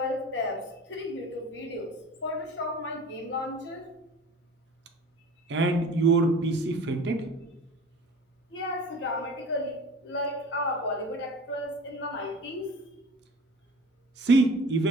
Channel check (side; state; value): both; normal; correlation 0.40